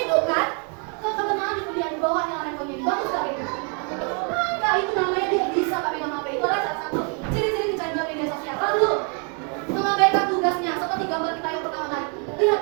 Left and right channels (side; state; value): left; quieter; 38.8 dB